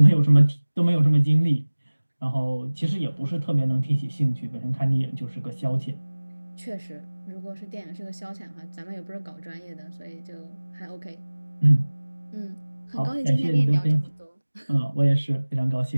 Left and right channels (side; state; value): both; inverted; correlation -1.00